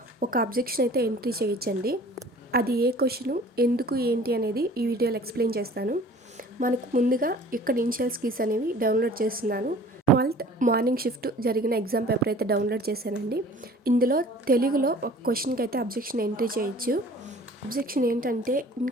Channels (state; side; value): normal; both; correlation 0.48